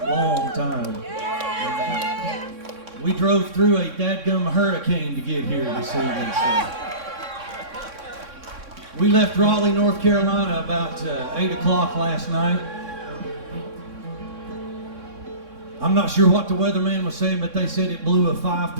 time. We drove through a dadgum hurricane to get here this evening. So. We left Raleigh, North Carolina about 8 o'clock last night. I'm not sure what the weatherman was saying, but they said it blew a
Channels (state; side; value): late; left; 3.6 ms